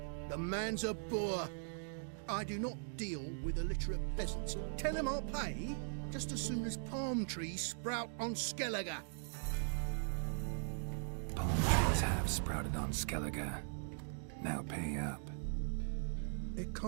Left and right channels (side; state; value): left; silent; digital silence